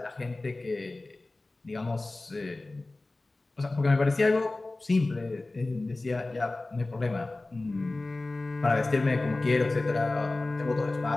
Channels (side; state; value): right; quieter; 3.0 dB